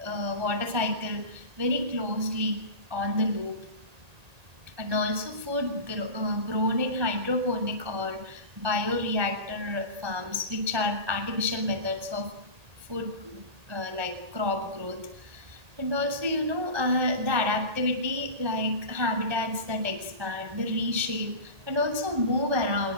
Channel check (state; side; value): late; left; 1.8 ms